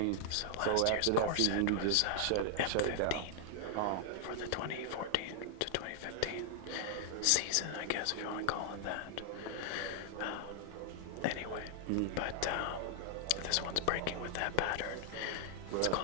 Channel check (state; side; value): different; both; correlation 0.00